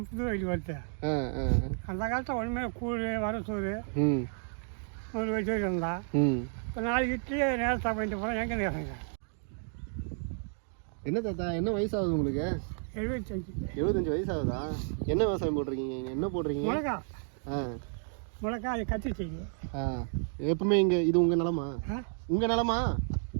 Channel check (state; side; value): silent; left; 57 dB below the other